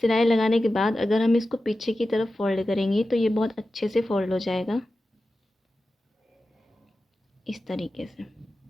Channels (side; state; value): both; normal; correlation 0.93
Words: लगाने के बाद अगर हम इसको पीछे की तरफ फ़ोल्ड करेंगे तो ये बहुत अच्छे से फ़ोल्ड हो जाएगा, इस तरीके से।